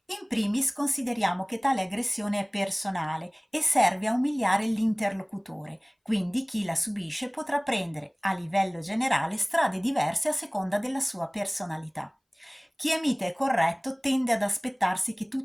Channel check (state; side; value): identical; both; correlation 1.00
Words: In primis consideriamo che tale aggressione è personale e serve a umiliare l'interlocutore, quindi chi la subisce potrà prendere, a livello generale, strade diverse a seconda della sua personalità. Chi è mite e corretto tende ad aspettarsi che